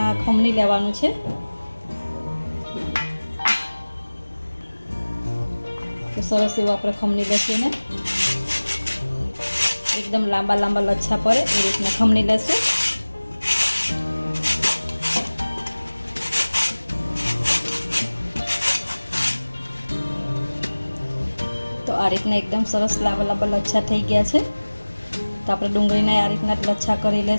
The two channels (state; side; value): inverted; both; correlation -1.00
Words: खमणी लेवानुं छे। तो सरस एवं आप खमणी लेशुं ने एकदम लांबा लांबा लच्छा पड़े ए रीतना खमणी लेशुं। तो आ रीतना एकदम सरस लांबा लांबा लच्छा थई गया छे। तो आपणे डूंगળીને आ रीतना लच्छा करी